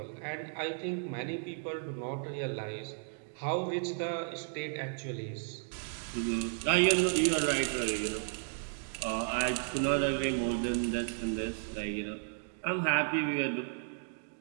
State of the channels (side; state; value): left; silent; digital silence